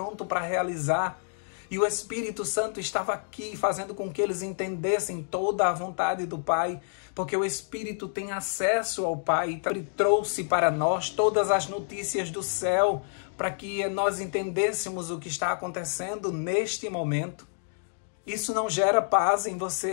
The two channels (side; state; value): right; silent; digital silence